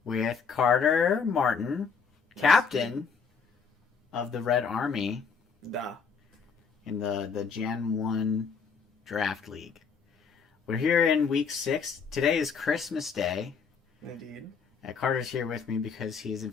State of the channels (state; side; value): quieter; right; 5.7 dB